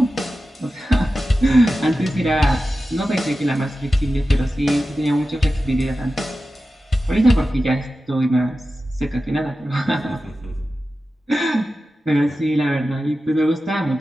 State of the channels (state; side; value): normal; both; correlation 0.93